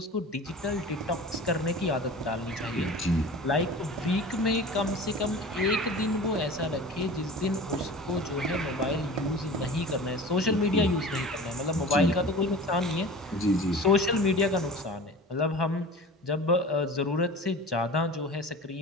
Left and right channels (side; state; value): both; normal; correlation 0.37